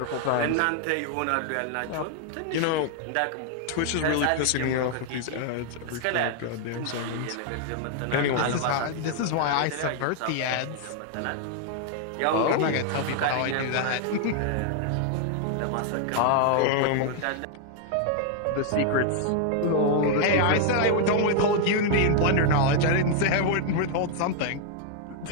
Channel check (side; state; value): both; different; correlation 0.00